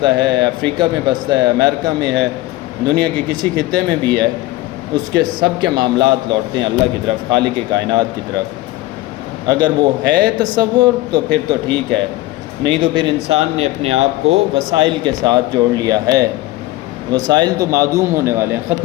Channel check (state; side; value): quieter; right; 17.7 dB